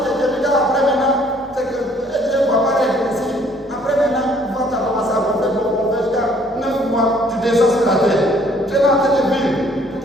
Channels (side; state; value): both; normal; correlation 0.61